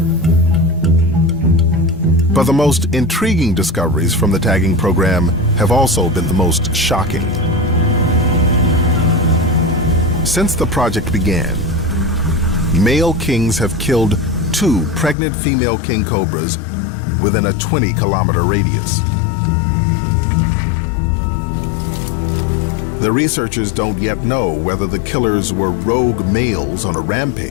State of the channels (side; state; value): right; drops out; at 15.2 s